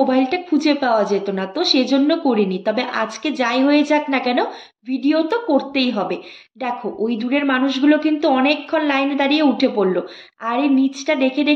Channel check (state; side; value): identical; both; correlation 1.00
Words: খুঁজে পাওয়া যেত না, তো সেজন্য করিনি। তবে আজকে যাই হয়ে যাক না কেন ভিডিও তো করতেই হবে। দেখো ওই দূরের মানুষগুলো কিন্তু অনেকক্ষণ লাইনে দাঁড়িয়ে উঠে পড়লো। আর এই নিচটা দেখে